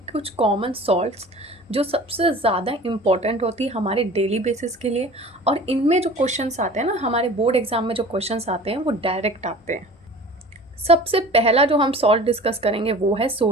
कुछ कॉमन सॉल्ट्स जो सबसे ज़्यादा इम्पॉर्टेंट होती है हमारे डेली बेसिस के लिए, और इनमें जो क्वेश्चंस आते हैं ना, हमारे बोर्ड एग्जाम में जो क्वेश्चंस आते हैं वो डायरेक्ट आते हैं। सबसे पहला जो हम सॉल्ट डिस्कस करेंगे वो है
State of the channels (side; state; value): both; normal; correlation 0.42